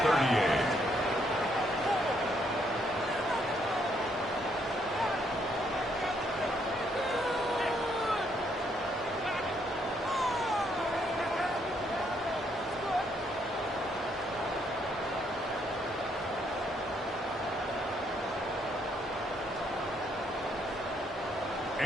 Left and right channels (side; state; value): both; normal; correlation 0.72